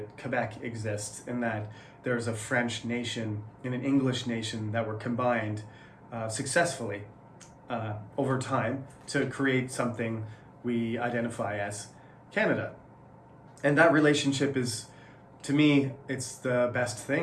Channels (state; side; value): identical; both; correlation 1.00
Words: Quebec exists, and that there's a French nation and an English nation that were combined successfully over time to create something we identify as Canada. And that relationship is, to me, it's the best